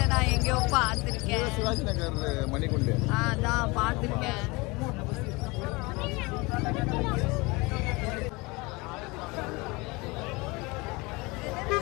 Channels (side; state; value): right; quieter; 25.1 dB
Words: நான் எங்கேயோ பார்த்துருக்கேன். சிவாஜி நகர் மணிக்குண்டு. அதான் பார்த்துருக்கேன்.